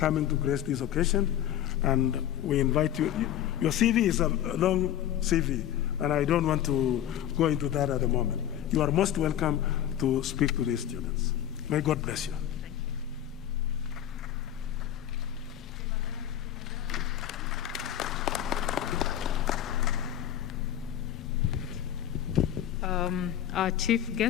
to grace this occasion. And we invite you. Your CV is a long CV, and I don't want to go into that at the moment. You are most welcome to speak to these students. May God bless you. Our chief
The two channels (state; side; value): quieter; right; 11.1 dB